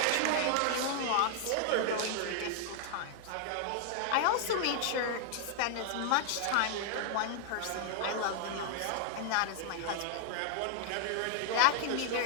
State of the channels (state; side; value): different; both; correlation 0.00